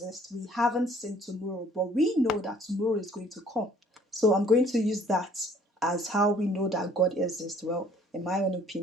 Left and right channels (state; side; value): normal; both; correlation 0.57